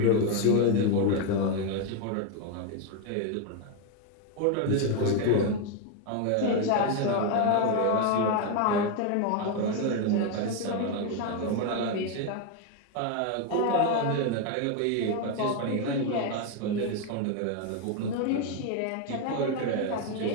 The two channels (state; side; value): different; both; correlation 0.02